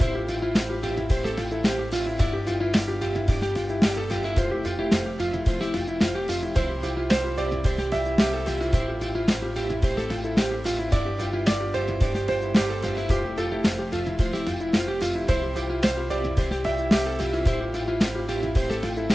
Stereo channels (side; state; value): both; normal; correlation 0.96